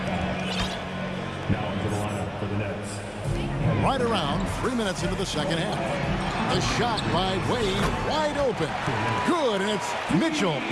Now into the lineup for the Nets. Right around 3 minutes into the second half. The shot by Wade, wide open. Good, and it's Mitchell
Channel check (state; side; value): identical; both; correlation 1.00